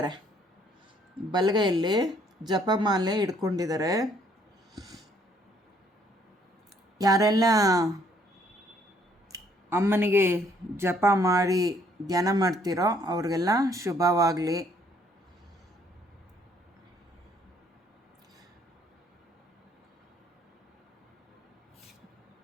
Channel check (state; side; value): normal; both; correlation 0.65